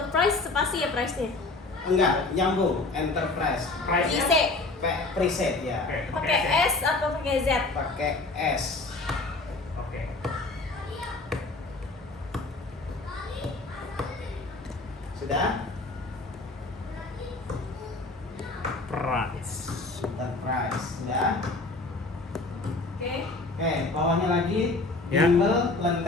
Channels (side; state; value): right; quieter; 3.3 dB